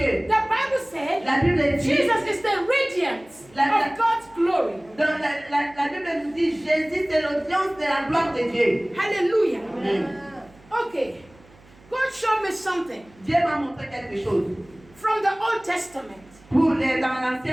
The Bible said La Bible dit, Jesus is the radiance of God's glory. dans la Bible nous dit, Jésus c'est l'audience de la gloire de Dieu. Hallelujah. Amen. Okay. God showed me something Dieu m'a montré quelque chose from the Old Testament. dans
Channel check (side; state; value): right; noise; hum, 27 dB below the sound